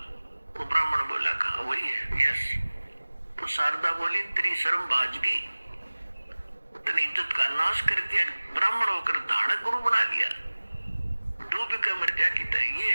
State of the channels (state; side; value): inverted; both; correlation -1.00